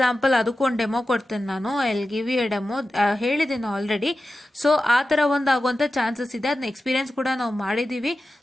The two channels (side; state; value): both; normal; correlation 0.93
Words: ಅದಕ್ಕೊಂದು ಡೆಮೋ ಕೊಡ್ತೇನೆ ನಾನು, I give you a demo, ಹೇಳಿದ್ದೀನಿ ಆಲ್ರೆಡಿ. ಸೊ ಆ ಥರ ಒಂದು ಆಗುವಂಥ ಚಾನ್ಸಸ್ ಇದೆ, ಅದನ್ನ ಎಕ್ಸ್ಪೀರಿಯನ್ಸ್ ಕೂಡ ನಾವು ಮಾಡಿದ್ದೀವಿ.